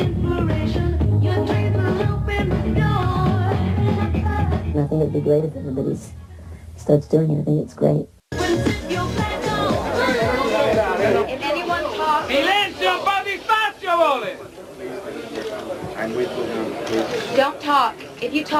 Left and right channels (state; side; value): identical; both; correlation 1.00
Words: And I think it'd be great if everybody starts doing it. I think it's great. If anyone talks... Silenzio, un po' di spazio, vole! Don't talk. If you